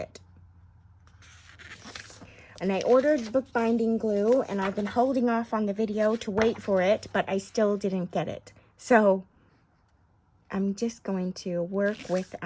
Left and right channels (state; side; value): identical; both; correlation 1.00